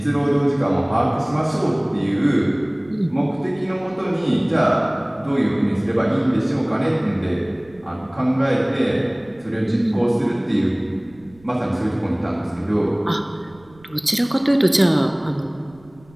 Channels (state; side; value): noise; right; rumble, 27 dB below the sound